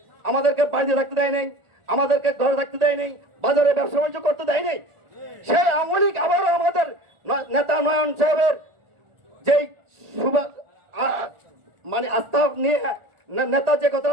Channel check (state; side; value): late; left; 1.4 ms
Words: আমাদেরকে বাড়িতে থাকতে দেয় নাই, আমাদেরকে ঘরে থাকতে দেয় নাই, বাজারে ব্যবসা বাণিজ্য করতে দেয় নাই, সেই আওয়ামী লীগ আবারও আমাদের নেতা নয়ন সাহেবের যেই মানে আস্থা নিয়ে নেতা যে